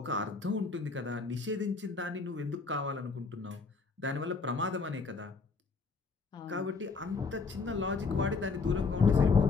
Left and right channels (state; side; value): quieter; right; 4.4 dB